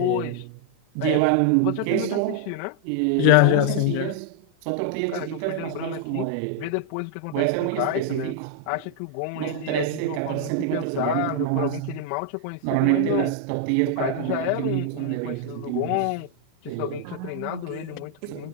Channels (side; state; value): both; different; correlation -0.01